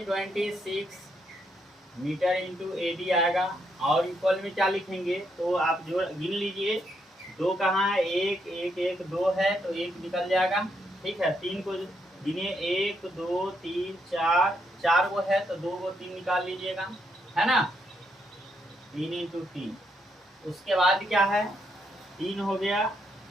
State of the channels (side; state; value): both; normal; correlation 0.77